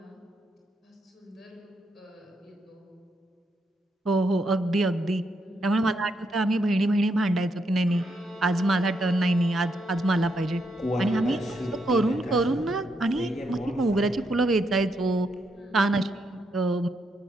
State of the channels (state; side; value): normal; both; correlation 0.79